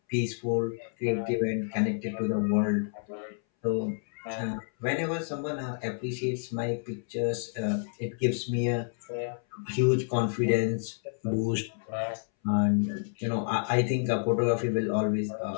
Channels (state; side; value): silent; right; 58 dB below the other